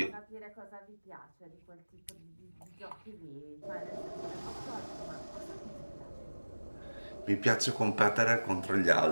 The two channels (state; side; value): inverted; both; correlation -1.00